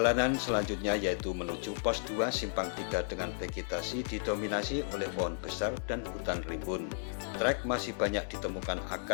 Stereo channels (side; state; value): right; silent; digital silence